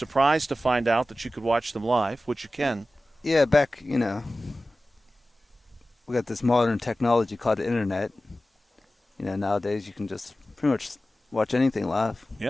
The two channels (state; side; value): normal; both; correlation 0.95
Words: to find out that you could watch them live, which you can. Yeah, back, we got this modern technology called the internet. Nowadays you can just pretty much watch anything live.